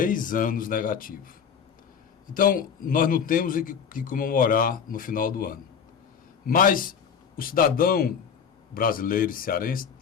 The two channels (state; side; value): quieter; right; 7.1 dB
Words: anos negativo. Então, nós não temos que comemorar no final do ano. Mas o cidadão brasileiro e cearense